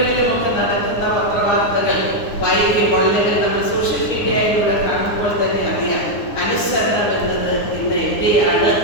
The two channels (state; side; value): late; right; 9.5 ms